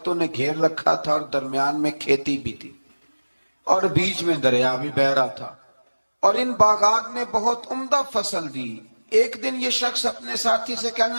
نے گھیر رکھا تھا، اور درمیان میں کھیتی بھی تھی اور بیچ میں دریا بھی بہہ رہا تھا، اور ان باغات نے بہت عمدہ فصل دی۔ ایک دن یہ شخص اپنے ساتھی سے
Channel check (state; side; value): inverted; both; correlation -1.00